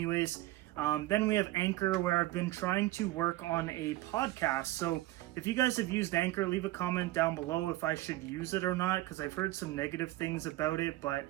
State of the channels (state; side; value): quieter; left; 17.3 dB